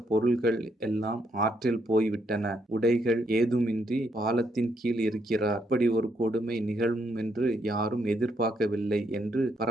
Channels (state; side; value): normal; both; correlation 0.75